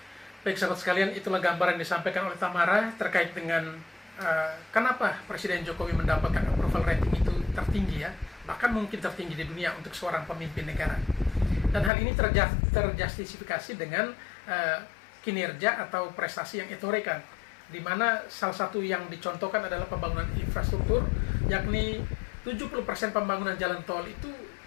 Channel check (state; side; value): drops out; right; at 11.9 s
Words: Baik sahabat sekalian, itulah gambaran yang disampaikan oleh Tamara terkait dengan kenapa Presiden Jokowi mendapatkan approval rating itu tertinggi ya, bahkan mungkin tertinggi di dunia untuk seorang pemimpin negara. Dan hal ini terjustifikasi dengan kinerja atau prestasi yang ditorekan, di mana salah satu yang dicontohkan adalah pembangunan infrastruktur, yakni 70% pembangunan jalan tol itu